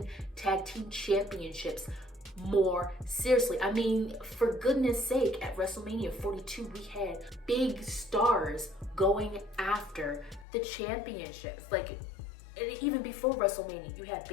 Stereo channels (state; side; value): drops out; right; at 10.5 s